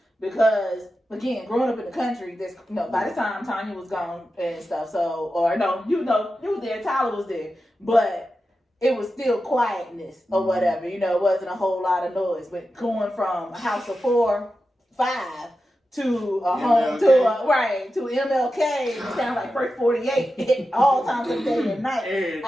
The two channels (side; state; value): both; normal; correlation 0.91